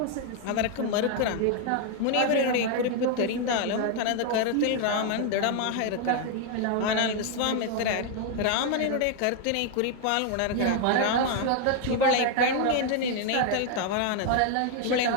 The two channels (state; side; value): different; both; correlation 0.01